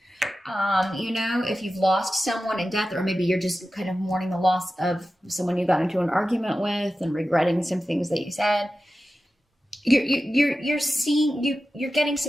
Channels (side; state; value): both; normal; correlation 0.93